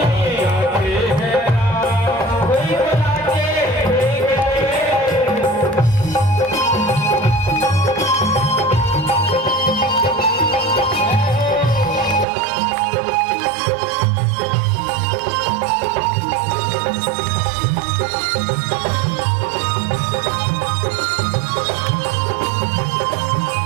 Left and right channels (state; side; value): drops out; left; at 12.2 s